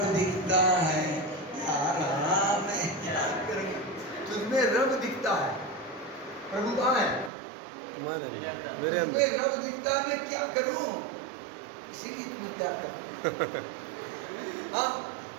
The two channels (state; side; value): drops out; left; at 7.3 s